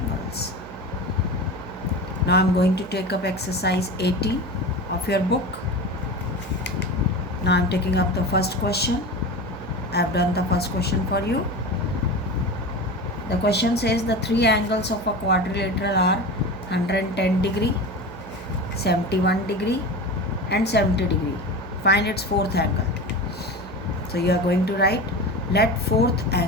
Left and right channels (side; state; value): right; noise; hum, 15 dB below the sound